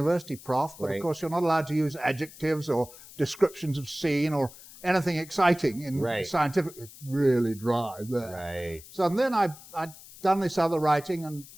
prof, but of course you're not allowed to use adjectives or descriptions of scene or anything exciting in scientific. It's really dry there. Right. So then I'd done this other writing and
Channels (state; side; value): noise; left; hiss, 19 dB below the sound